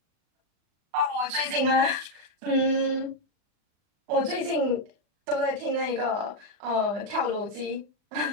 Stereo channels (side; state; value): left; late; 39 ms